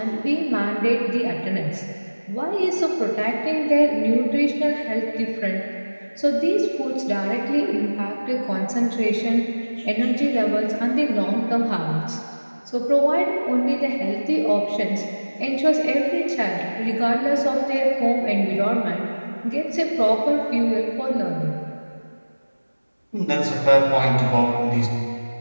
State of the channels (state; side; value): inverted; both; correlation -1.00